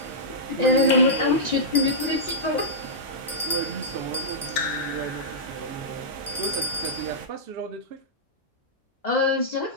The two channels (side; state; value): both; normal; correlation -0.13